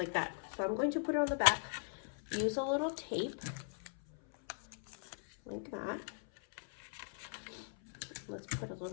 that. So I'm going to put it on the back. Use a little tape like that. Let's put a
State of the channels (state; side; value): silent; right; 51 dB below the other